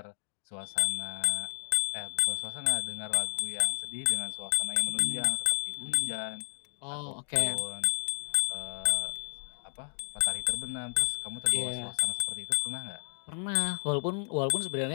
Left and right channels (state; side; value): silent; right; digital silence